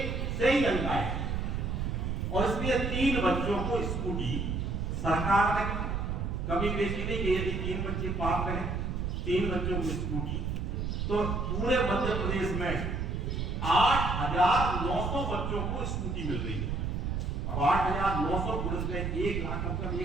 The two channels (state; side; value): noise; right; rumble, 1 dB below the sound